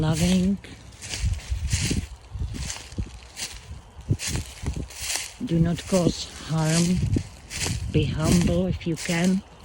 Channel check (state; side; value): identical; both; correlation 1.00